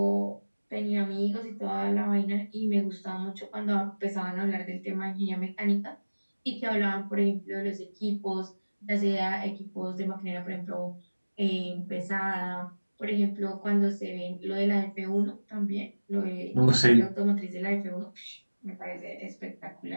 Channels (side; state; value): both; inverted; correlation -1.00